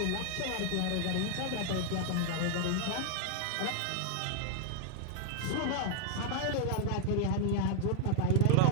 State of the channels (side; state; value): both; different; correlation 0.00